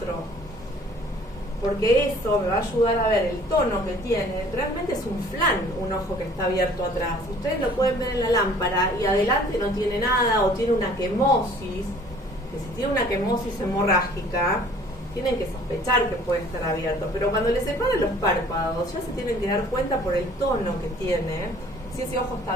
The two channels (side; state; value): both; normal; correlation 0.53